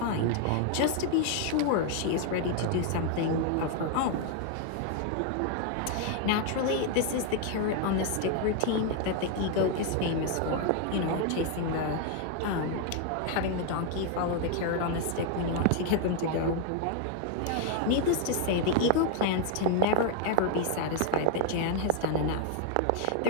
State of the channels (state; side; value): different; both; correlation 0.00